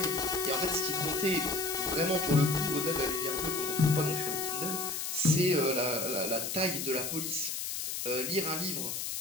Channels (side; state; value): left; noise; hiss, 3 dB below the sound